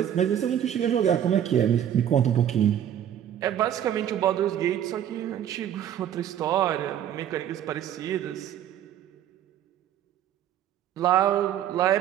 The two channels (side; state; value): left; quieter; 10.4 dB